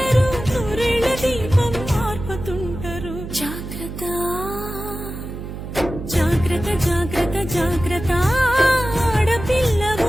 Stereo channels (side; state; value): right; noise; hum, 9 dB below the sound